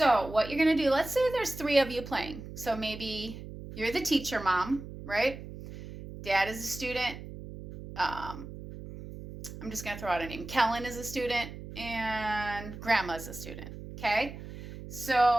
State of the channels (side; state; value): right; noise; hum, 12 dB below the sound